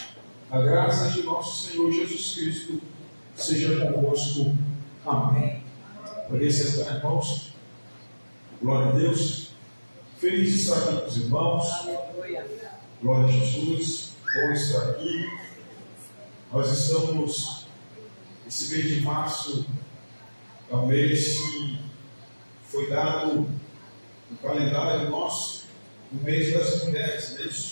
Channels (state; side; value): inverted; both; correlation -1.00